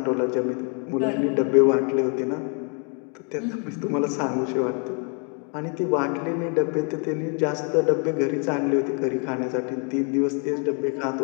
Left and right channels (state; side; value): quieter; right; 38.4 dB